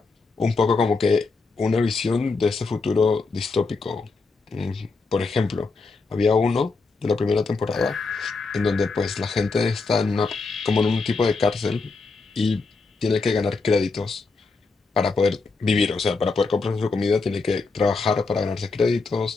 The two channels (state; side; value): quieter; right; 4.1 dB